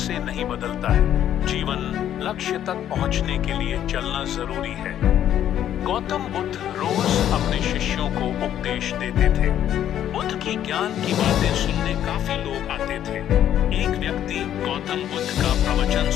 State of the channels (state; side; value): quieter; right; 10.8 dB